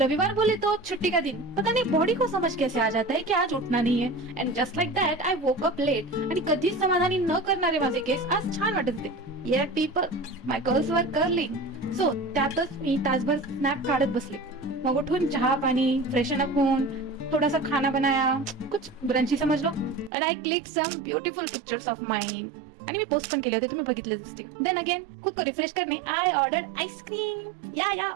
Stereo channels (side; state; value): left; drops out; at 20.1 s